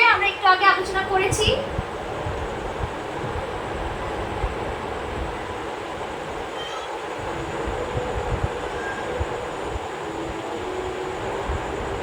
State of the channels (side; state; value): both; identical; correlation 1.00